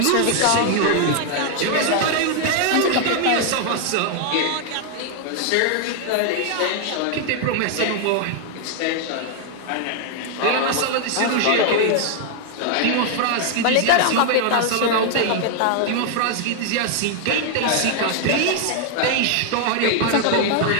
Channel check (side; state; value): both; different; correlation 0.00